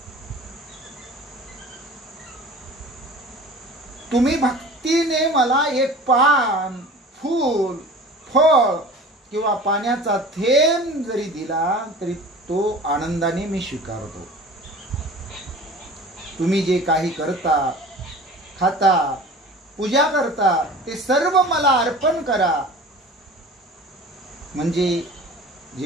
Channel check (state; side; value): normal; both; correlation 0.41